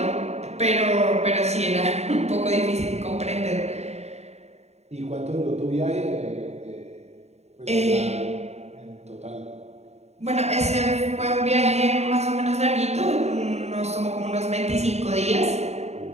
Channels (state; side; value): late; left; 0.32 ms